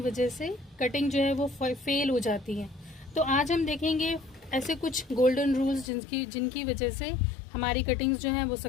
वजह से कटिंग जो है वो फेल हो जाती है। तो आज हम देखेंगे ऐसे कुछ गोल्डन रूल्स जिनकी वजह से हमारी कटिंग्स जो हैं वो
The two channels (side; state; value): right; drops out; at 5.9 s